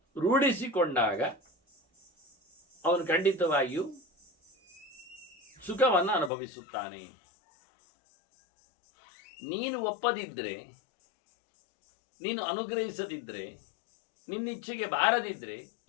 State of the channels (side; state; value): right; drops out; at 6.3 s